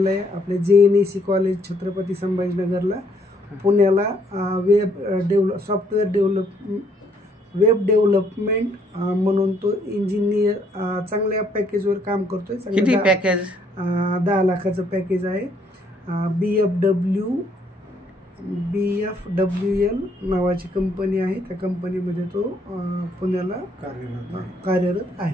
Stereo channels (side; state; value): both; normal; correlation 0.68